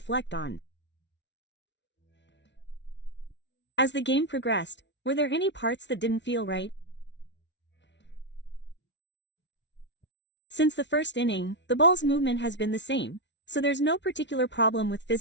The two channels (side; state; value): right; late; 0.51 ms